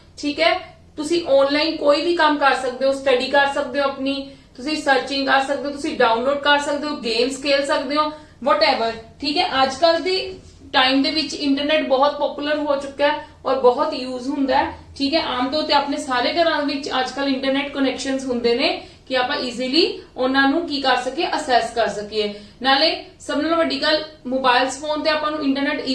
ठीक है। तुसी ऑनलाइन कोई भी काम कर सकते हो, स्टडी कर सकते हो, अपनी तुसी सर्चिंग कर सकते हो, तुसी डाउनलोड कर सकते हो, गेम्स खेल सकते हो, वटएवर, ठीक है। आजकल दी टाइम दे विच इंटरनेट बहुत पॉपुलर हो चुका है और बहुत यूज हुंदा है, ठीक है। आम तौर ते अपने सारे घरां विच आजकल इंटरनेट कनैक्शनस हुंदे ने कि आप इजीली उन्हां नूं की कर सके, असैस कर सकीए। नाले सब नालों वड्डी गल मोबाइल्स फोन ते आपां नूं इंटरनेट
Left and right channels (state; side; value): identical; both; correlation 1.00